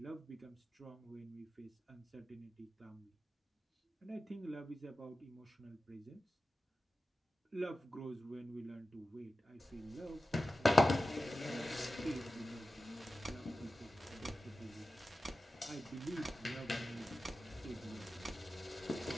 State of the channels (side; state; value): both; normal; correlation 0.92